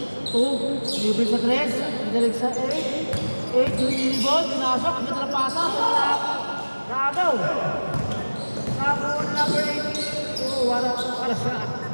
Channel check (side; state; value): both; inverted; correlation -1.00